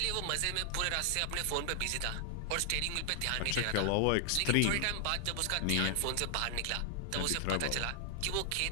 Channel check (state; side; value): different; both; correlation 0.00